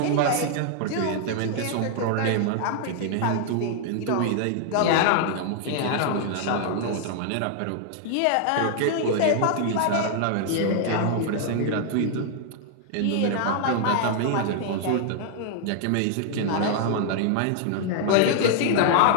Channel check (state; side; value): different; both; correlation 0.00